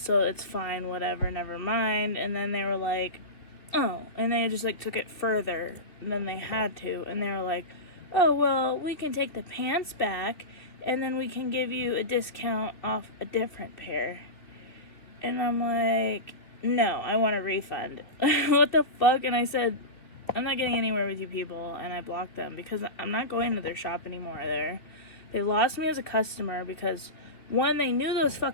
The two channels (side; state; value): right; late; 3.0 ms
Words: it's fine, whatever, never mind. And then they were like, oh, and they just, like, took it further than they had to, and they were like, oh, well, we can take the pants back, and then we can give you a discount off a different pair. And I'm like, no, I want a refund. What the fuck? And I said, I'm not getting anywhere with you people, and I blocked them because I'm not going to their shop anymore there. They lost me as a customer because, one, they knew those